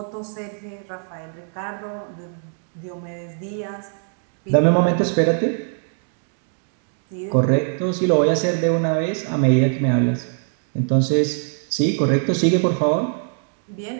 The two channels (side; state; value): left; silent; 61 dB below the other